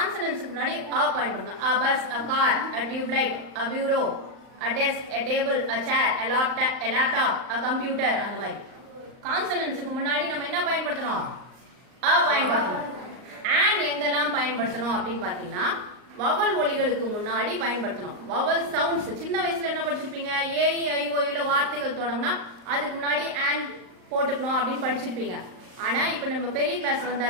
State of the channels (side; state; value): left; late; 38 ms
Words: முன்னாடி பயன்படுத்தணும். a bus, a car, a tube light, a bureau, a desk, a table, a chair, a laptop, a computer அந்த மாதிரி. கான்சனன்ட்ஸ்க்கு முன்னாடி நம்ம என்ன பயன்படுத்தணும்? பயன்படுத்தணும். and எங்கெல்லாம் பயன்படுத்தணும் அப்படின்னு பாத்தீங்கன்னா வவல் ஒலிகளுக்கு முன்னாடி பயன்படுத்தணும். வவல் சவுண்ட்ஸ் சின்ன வயசுல என்ன படிச்சிருப்பீங்க? A-E-I-O-U வார்த்தைகள் தொடங்கினா அதுக்கு முன்னாடி and போட்டுக்கணும் அப்படின்னு படிச்சிருப்பீங்க. ஆனா இப்ப நம்ம பெரிய கிளாஸ்